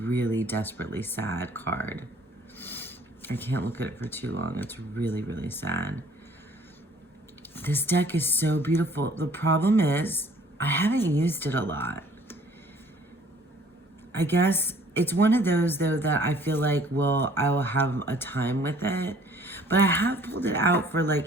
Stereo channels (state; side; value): normal; both; correlation 0.56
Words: desperately sad card. I can't look at it for too long. It's really, really sad. This deck is so beautiful. The problem is, I haven't used it a lot. I guess it's one of those, though, that I feel like I will have a time with it. But I have pulled it out for